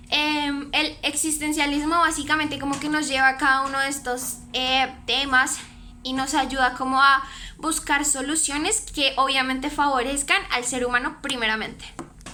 el existencialismo básicamente como que nos lleva a cada uno de estos temas y nos ayuda como a buscar soluciones que obviamente favorezcan al ser humano primeramente.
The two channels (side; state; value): both; identical; correlation 1.00